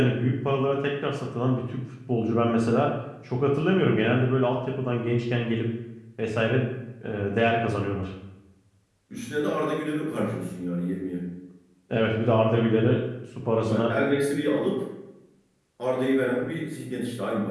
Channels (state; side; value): identical; both; correlation 1.00